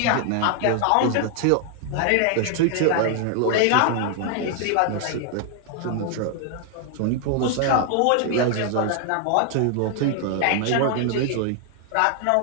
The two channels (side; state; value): both; different; correlation 0.00